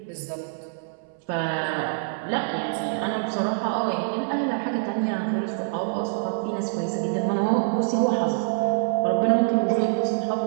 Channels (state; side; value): silent; left; 62 dB below the other